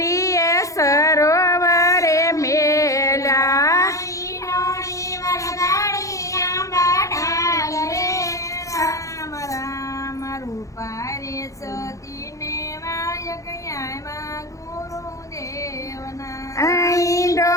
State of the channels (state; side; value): late; right; 0.15 ms